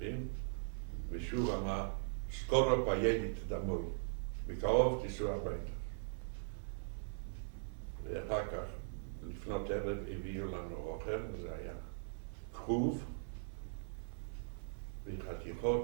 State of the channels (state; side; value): silent; left; 51 dB below the other